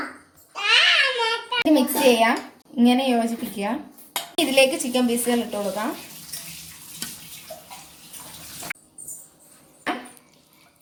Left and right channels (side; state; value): both; identical; correlation 1.00